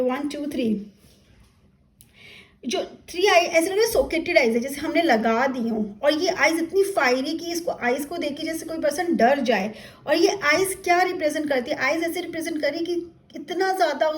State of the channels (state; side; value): identical; both; correlation 1.00